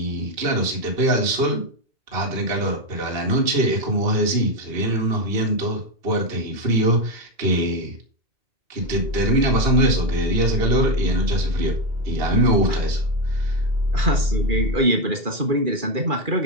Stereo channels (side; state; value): left; late; 2.8 ms